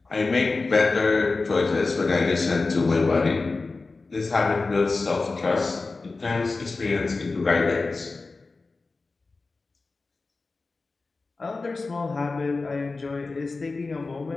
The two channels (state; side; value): quieter; right; 3.8 dB